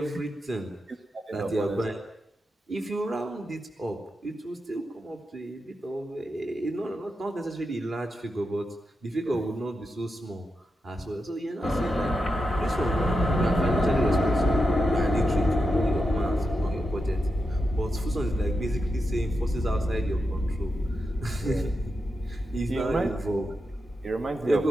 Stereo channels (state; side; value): normal; both; correlation 0.88